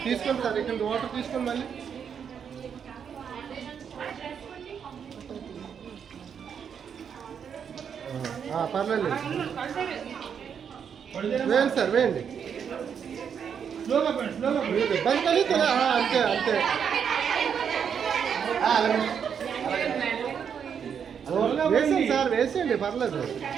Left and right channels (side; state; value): left; quieter; 7.5 dB